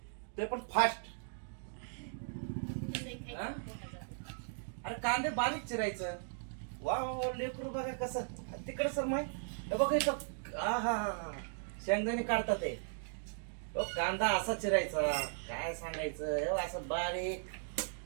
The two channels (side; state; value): left; silent; digital silence